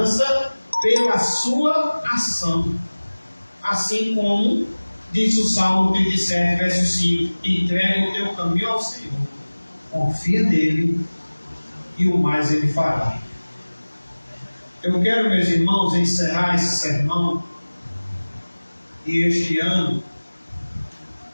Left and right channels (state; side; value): inverted; both; correlation -1.00